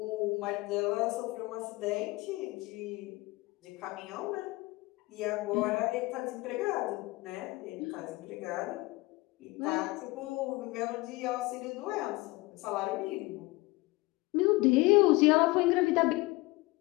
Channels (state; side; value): quieter; right; 22.0 dB